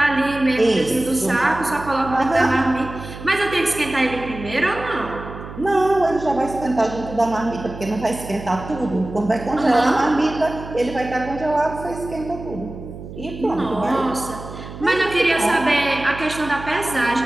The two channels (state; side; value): noise; right; hum, 12 dB below the sound